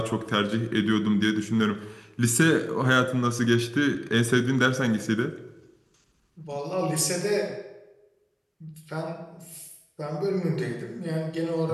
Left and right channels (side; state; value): both; identical; correlation 1.00